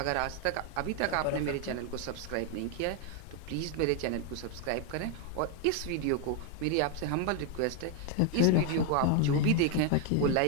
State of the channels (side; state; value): both; different; correlation 0.01